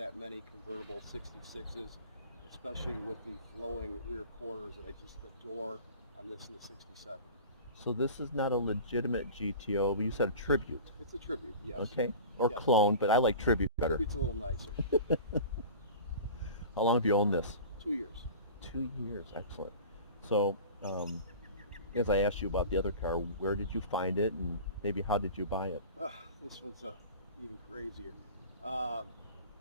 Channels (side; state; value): both; inverted; correlation -0.37